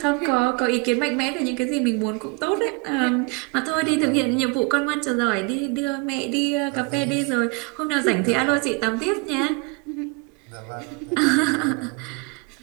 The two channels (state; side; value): quieter; left; 30.0 dB